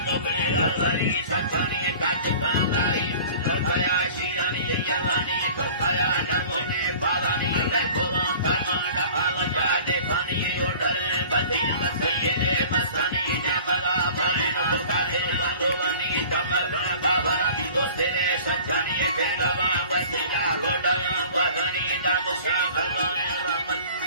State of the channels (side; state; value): both; inverted; correlation -0.45